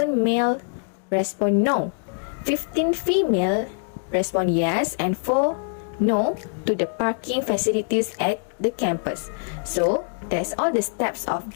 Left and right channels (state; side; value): silent; right; digital silence